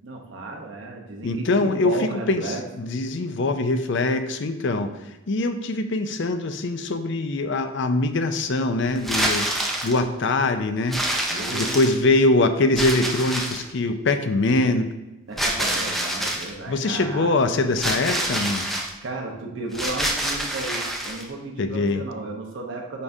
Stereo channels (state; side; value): normal; both; correlation 0.20